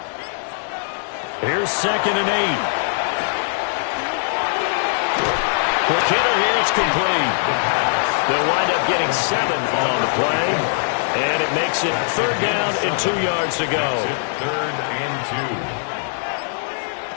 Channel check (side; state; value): right; silent; digital silence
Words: Here's 2nd and 8. Quick hitter here, it's complete. They'll wind up getting 7 on the play, and it makes it 3rd down and 2 yards to go. 3rd and 2.